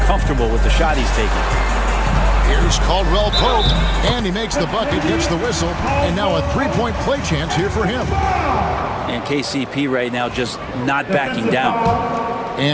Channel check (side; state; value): both; identical; correlation 1.00